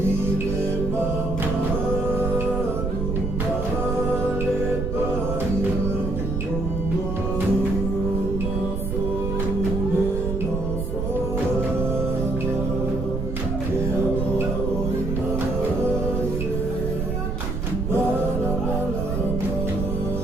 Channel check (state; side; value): noise; right; rumble, 2 dB below the sound